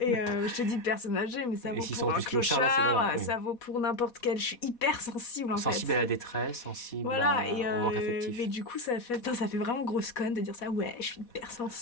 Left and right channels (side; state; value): right; late; 4.2 ms